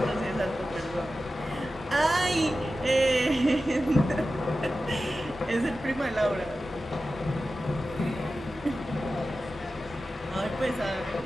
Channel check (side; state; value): both; normal; correlation 0.93